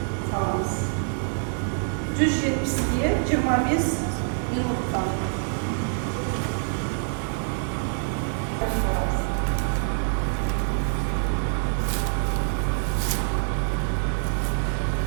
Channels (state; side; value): silent; left; 61 dB below the other